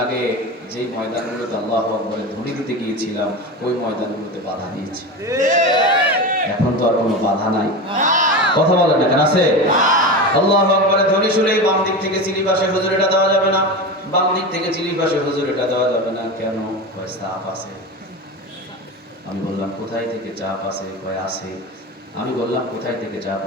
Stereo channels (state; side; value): normal; both; correlation 0.24